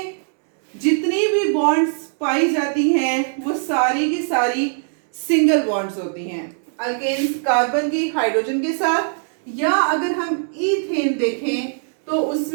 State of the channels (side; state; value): left; silent; digital silence